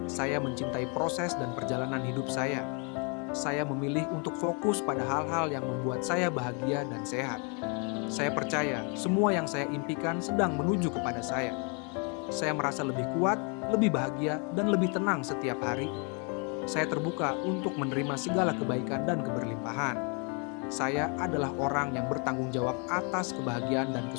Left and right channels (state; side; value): quieter; right; 36.3 dB